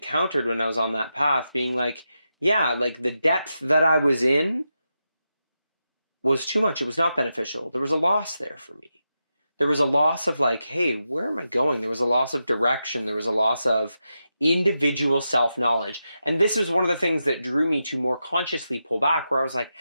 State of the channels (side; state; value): both; inverted; correlation -0.88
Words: when I was on that path, being like, yeah, like the depth that I was in was too much. It was not beneficial. There was a loss there for me. There was a loss of like, hey, where am I going? There was a loss of direction. There was a loss of individual self-knowledge. And this is one of the things that drew me to more consciously pull back, where I was like,